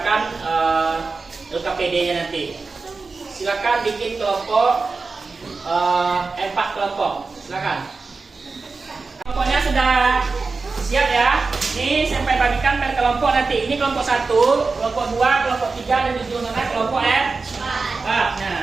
LKPD-nya nanti. Silakan bikin kelompok 4 kelompok. Silakan. Kelompoknya sudah siap ya. Ini sampai bagikan per kelompok nanti. Ini kelompok 1, kelompok 2, kelompok 3 dan di ujung sana kelompok 4.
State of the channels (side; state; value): left; quieter; 4.1 dB